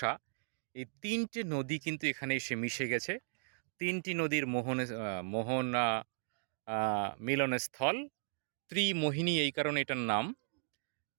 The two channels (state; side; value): silent; left; digital silence